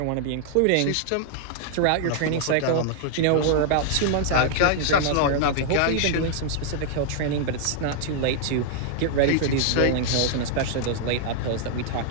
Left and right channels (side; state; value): both; different; correlation -0.01